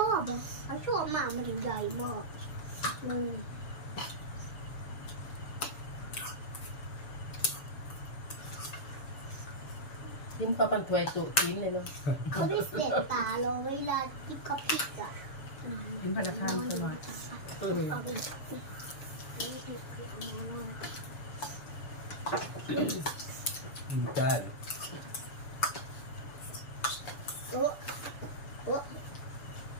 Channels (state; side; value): late; right; 7.0 ms